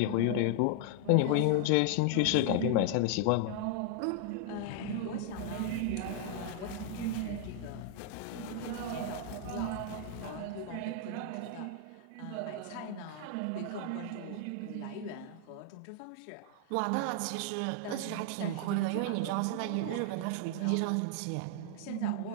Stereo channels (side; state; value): both; different; correlation 0.00